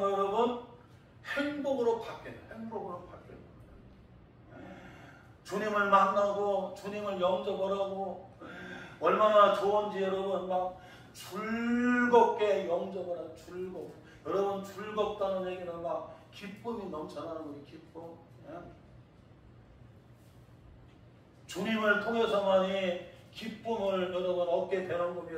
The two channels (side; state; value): both; identical; correlation 1.00